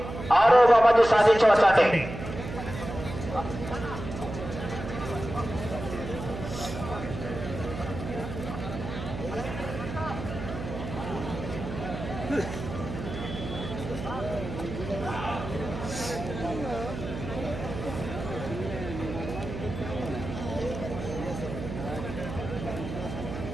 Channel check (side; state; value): right; noise; hum, 8 dB below the sound